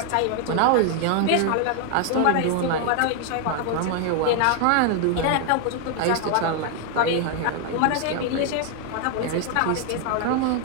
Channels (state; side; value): different; both; correlation 0.00